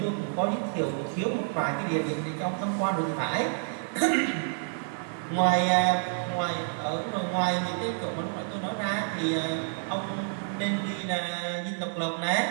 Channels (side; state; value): left; silent; 57 dB below the other